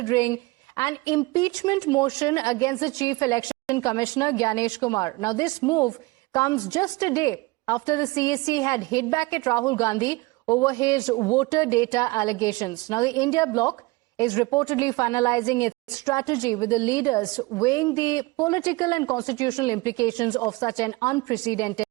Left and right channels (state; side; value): quieter; left; 23.0 dB